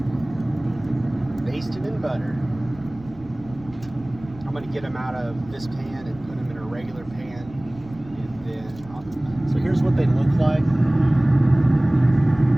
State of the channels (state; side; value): noise; right; rumble, 20 dB below the sound